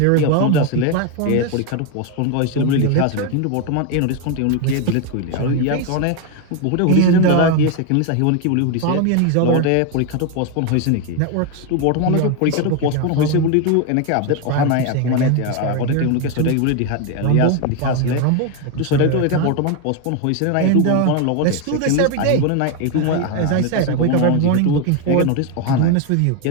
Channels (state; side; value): different; both; correlation 0.02